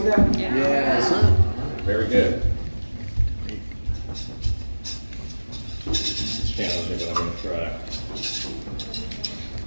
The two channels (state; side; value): inverted; both; correlation -1.00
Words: that? Yeah. Yes. Very good. It's challenging, but I'm going to try.